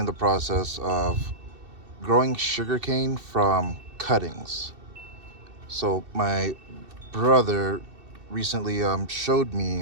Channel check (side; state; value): left; late; 2.7 ms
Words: the process of growing sugarcane from cuttings. So my brother recently showed me